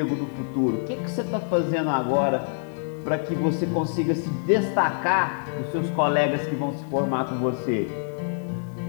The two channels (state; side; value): silent; right; digital silence